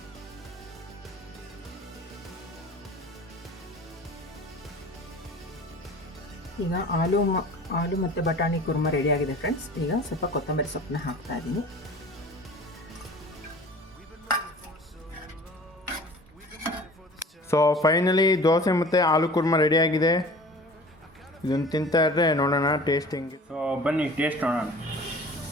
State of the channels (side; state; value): both; normal; correlation 0.43